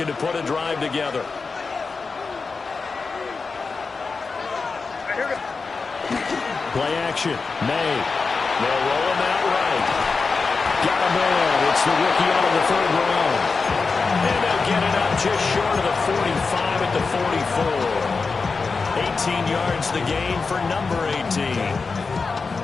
to put a drive together. Play action. May. They'll roll him out right. Got a man. It's the rookie out of the 3rd round. And they'll get it up just short of the 45 at the 44. 18 yards the gain for number 18.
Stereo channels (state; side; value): quieter; right; 4.5 dB